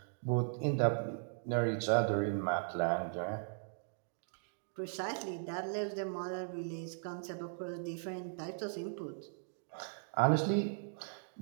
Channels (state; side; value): silent; left; digital silence